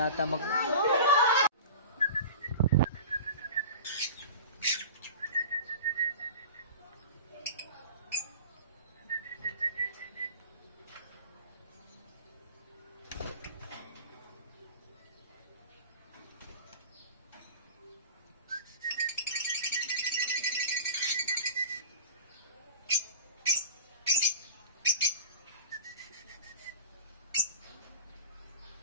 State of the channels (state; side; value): inverted; both; correlation -0.36